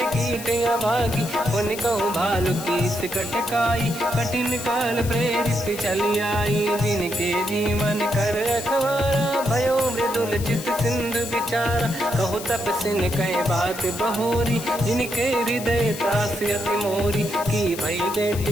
कीट अभागी। उन कहूँ भालु कीस कटकाई, कठिन काल प्रेरित चली आई। जिनके जीवन कर रखवारा, भयो मृदुल चित सिंधु विचारा। कहु तपसिन कहे बात बहोरी, जिनके हृदय त्रास अति मोरी। की भई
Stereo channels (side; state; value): left; noise; hiss, 11 dB below the sound